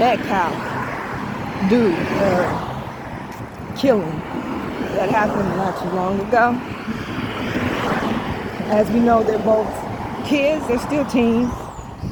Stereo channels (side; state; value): both; identical; correlation 1.00